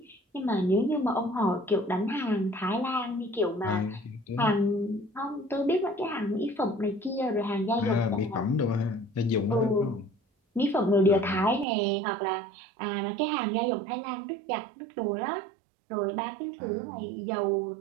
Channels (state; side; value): drops out; left; at 11.7 s